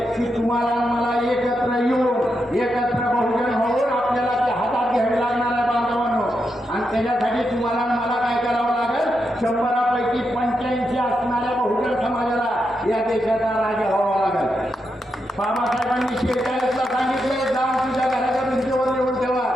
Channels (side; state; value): both; normal; correlation 0.84